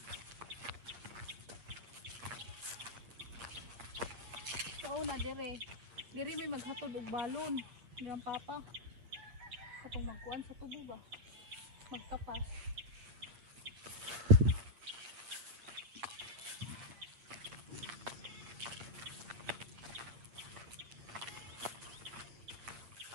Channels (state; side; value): late; left; 8.7 ms